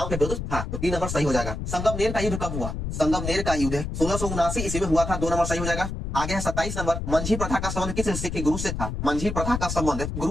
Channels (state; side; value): noise; left; rumble, 4 dB below the sound